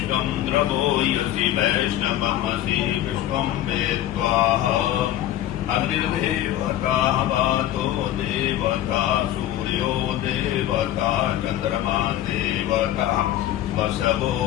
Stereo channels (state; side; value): quieter; right; 13.0 dB